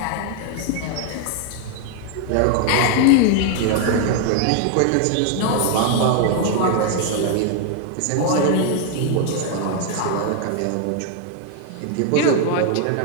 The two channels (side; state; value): both; different; correlation 0.00